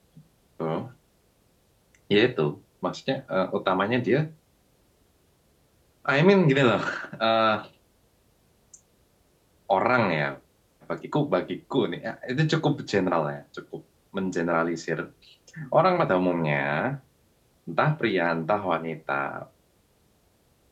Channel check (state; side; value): identical; both; correlation 1.00